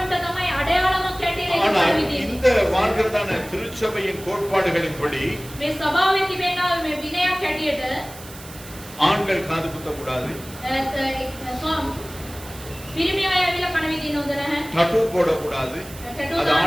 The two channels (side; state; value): right; noise; hiss, 17 dB below the sound